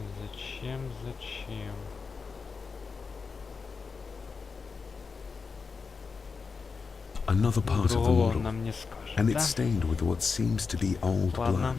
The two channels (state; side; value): quieter; right; 5.0 dB